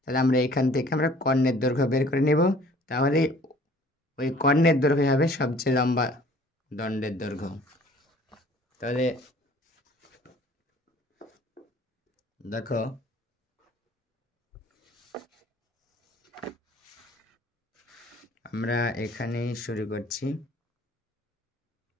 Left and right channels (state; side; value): normal; both; correlation 0.53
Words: তাহলে আমরা এখান থেকে আমরা কর্ণের দৈর্ঘ্য বের করে নেব। তাহলে ওই কর্ণের দৈর্ঘ্য হবে সবচেয়ে লম্বা দণ্ডের দৈর্ঘ্য। তাহলে দেখো আমরা এখানেই শুরু করছি।